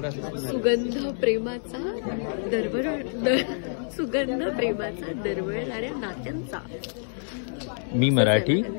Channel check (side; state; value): right; silent; digital silence